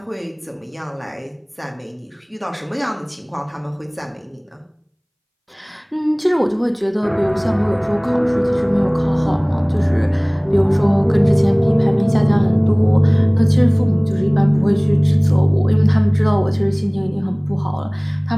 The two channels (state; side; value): identical; both; correlation 1.00